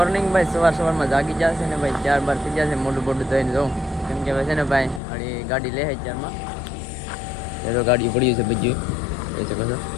ભાઈ. સવારમાં જાગી જશે ને ભાઈ 4-12 થઈ જશે. મોટું ધોઈને જાઉં કેમ કે છે ને ભાઈ હળી ગાડી લે 4માં એ તો ગાડી પડ્યું છે બધું એ છે કશો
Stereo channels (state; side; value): drops out; right; at 5.0 s